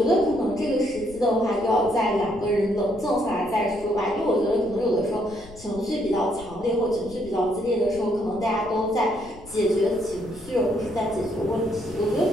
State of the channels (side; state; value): left; noise; rumble, 19 dB below the sound